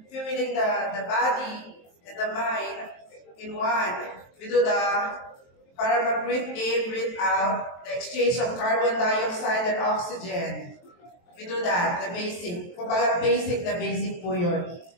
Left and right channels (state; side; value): late; right; 23 ms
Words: fueling the body and the mind in one. We do para mag-breathe in, breathe out, the exchange of carbon dioxide and oxygen. We do that, the basic. Kumbaga basic po yun.